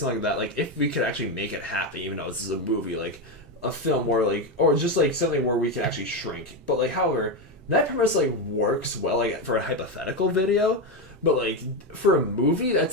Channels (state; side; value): normal; both; correlation 0.11